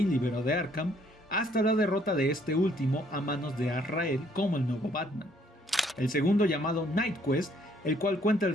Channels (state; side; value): normal; both; correlation 0.65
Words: liberó de Arkham, hasta la derrota de este último a manos de Azrael como el nuevo Batman. El segundo, llamado Night Quest, el cual cuenta el